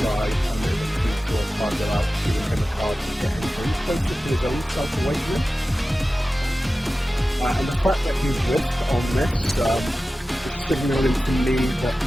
and then draw a target out, giving him a card and get him closer to his own self-awakening. And the fact that he's risked on this is signaling to me that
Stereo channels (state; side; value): normal; both; correlation 0.95